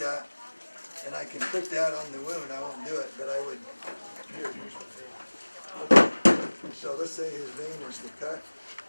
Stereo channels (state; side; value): inverted; both; correlation -1.00